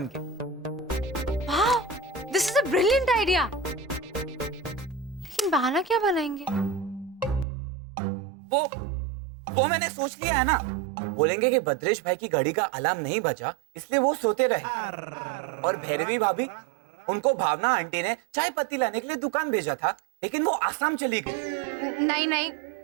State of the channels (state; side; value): drops out; left; at 7.5 s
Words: के। वाह, this is a brilliant idea. लेकिन बहाना क्या बनाएंगे? वो मैंने सोच लिया है ना। बोलेंगे कि बद्रेश भाई की घड़ी का अलार्म नहीं बजा, इसलिए वो सोते रहे, और भैरवी भाभी, उनको भावना आंटी ने चाय पत्ती लाने के लिए दुकान भेजा था, लेकिन वो आसाम चली गई। नहीं नहीं,